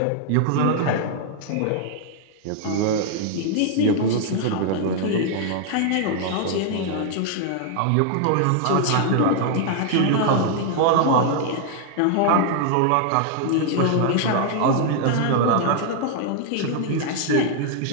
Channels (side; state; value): both; different; correlation 0.00